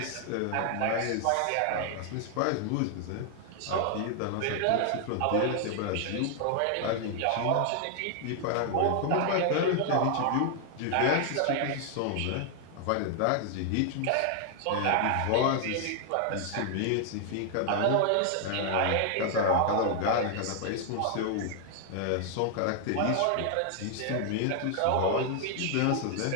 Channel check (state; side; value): different; both; correlation 0.00